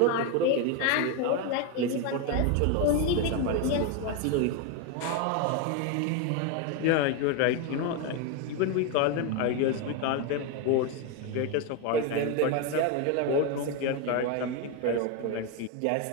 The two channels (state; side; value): different; both; correlation 0.02